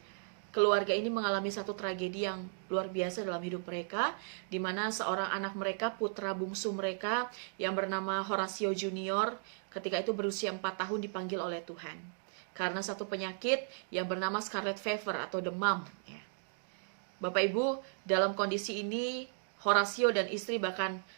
keluarga ini mengalami satu tragedi yang luar biasa dalam hidup mereka, di mana seorang anak mereka, putra bungsu mereka yang bernama Horatio Junior, ketika itu berusia 4 tahun dipanggil oleh Tuhan karena satu penyakit yang bernama scarlet fever atau demam. Bapak Ibu, dalam kondisi ini Horatio dan istri bahkan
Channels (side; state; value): left; silent; digital silence